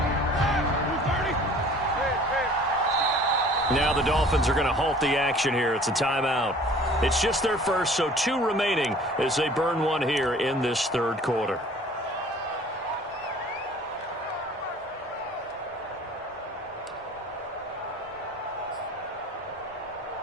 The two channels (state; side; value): normal; both; correlation 0.49